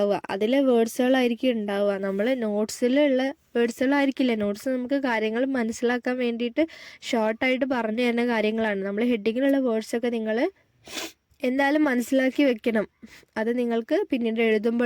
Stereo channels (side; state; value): both; identical; correlation 1.00